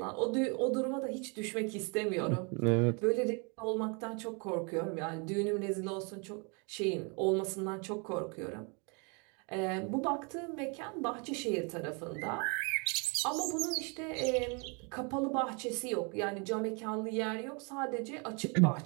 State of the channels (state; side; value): quieter; left; 33.6 dB